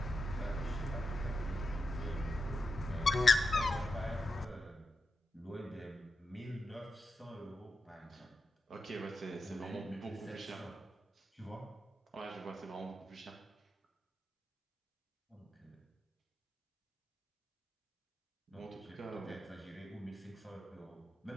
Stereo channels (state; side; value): normal; both; correlation 0.88